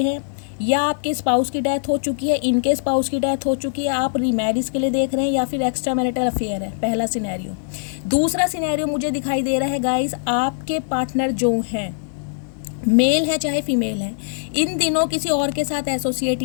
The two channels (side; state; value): right; silent; digital silence